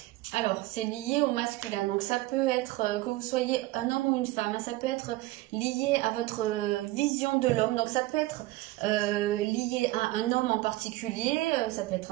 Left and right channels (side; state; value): left; quieter; 18.5 dB